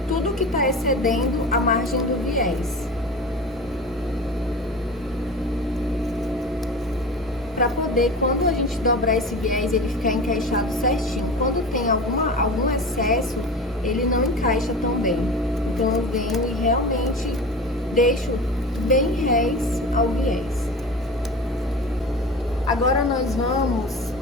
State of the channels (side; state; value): both; normal; correlation 0.32